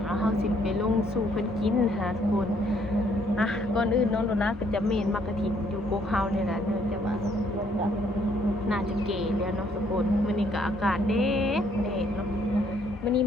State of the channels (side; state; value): both; normal; correlation 0.67